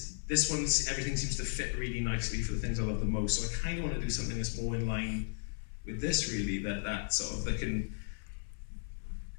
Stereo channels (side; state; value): right; silent; 54 dB below the other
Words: this one, everything seems to fit really nicely for the things I love the most. So I kind of want to do something that's more in line with this really, that sort of, they can,